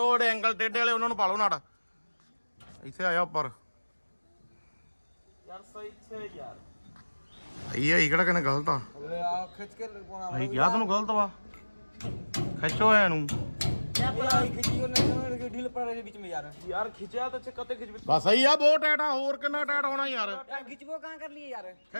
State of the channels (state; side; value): inverted; both; correlation -1.00